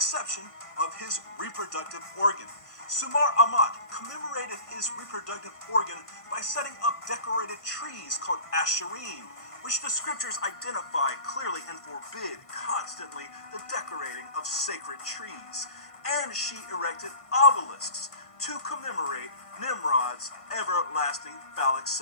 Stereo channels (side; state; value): right; late; 1.5 ms